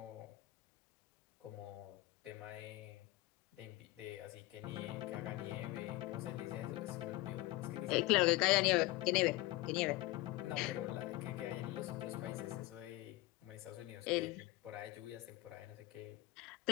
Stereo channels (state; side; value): quieter; right; 19.3 dB